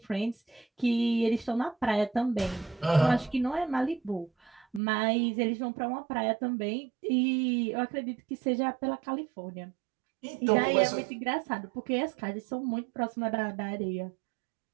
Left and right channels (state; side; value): drops out; left; at 4.8 s